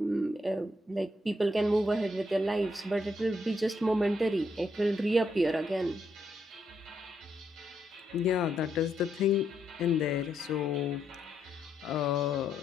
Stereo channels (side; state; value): both; normal; correlation 0.77